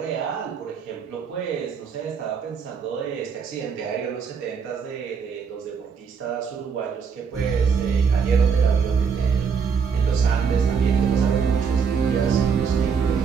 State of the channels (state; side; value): quieter; left; 6.2 dB